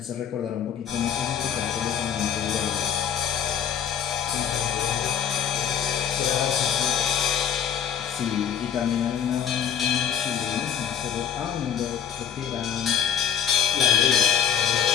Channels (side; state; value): right; quieter; 8.7 dB